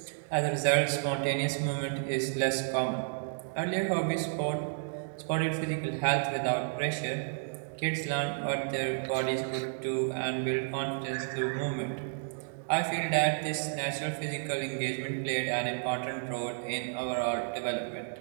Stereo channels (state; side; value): silent; left; digital silence